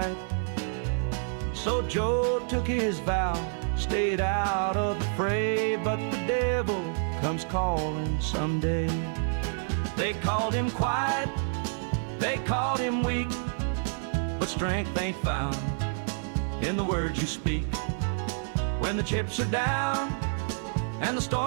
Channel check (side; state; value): left; silent; digital silence